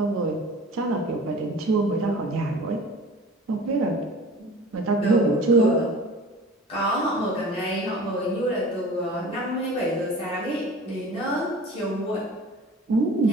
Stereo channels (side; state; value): both; normal; correlation 0.41